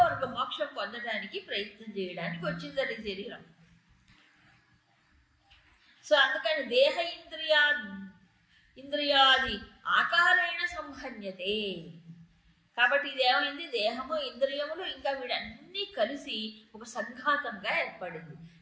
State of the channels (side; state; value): both; identical; correlation 1.00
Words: మోక్షం పొందడానికి ప్రయత్నం చేయడానికి వచ్చిందని శరీరం. సో అందుకని దేహ ఇంద్రియాది ఆకారేణ సంహన్యతే. కాబట్టి ఇది ఏమైంది, దేహము ఇంద్రియములు ఇంకా వీడన్నీ కలిసి ఒక సంఘాతంగా ఏర్పడింది,